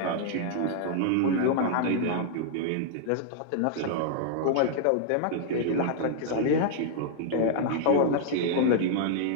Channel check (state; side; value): different; both; correlation -0.01